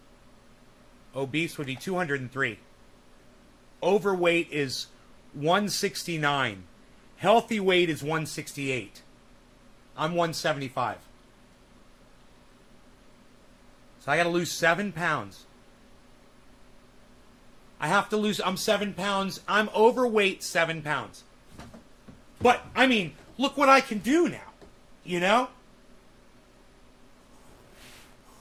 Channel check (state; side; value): identical; both; correlation 1.00